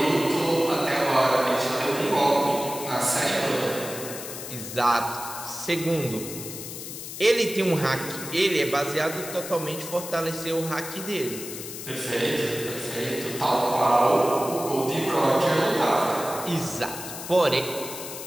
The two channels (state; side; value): noise; left; hiss, 9 dB below the sound